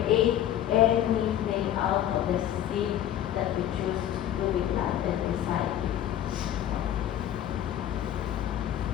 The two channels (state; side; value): quieter; right; 11.4 dB